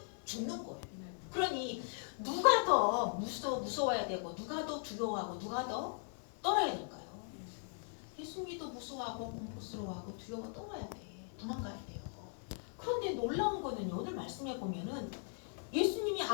죽는 거예요. 그러니 누가 더 무서워야 되고 누가 더 두려워하고 누가 더 떨어야 될까요? 예수님이 더 무서워하고 공포스러워하고 두려워 떨어야 돼. 도망가야 돼요. 그런데 놀라운 거는요. 오늘 말씀해 보면은 예수님이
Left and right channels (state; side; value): silent; right; 52 dB below the other